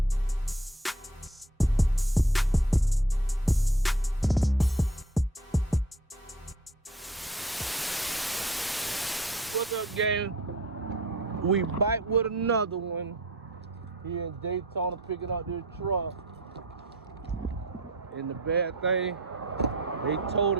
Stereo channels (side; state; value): both; normal; correlation 0.49